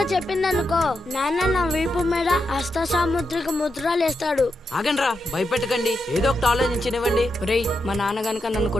చెప్పిందనుకో, నాన్న నా వీపు మీద హస్త సాముద్రిక ముద్రలు వేస్తాడు. ఆగండి రా, భయపెట్టకండి, ఏదో ఒకటి ఆలోచించనివ్వండి. రేయ్, మా నాన్న గనక నన్ను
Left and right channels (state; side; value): normal; both; correlation 0.85